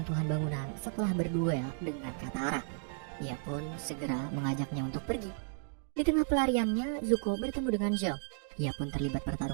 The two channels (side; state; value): left; silent; digital silence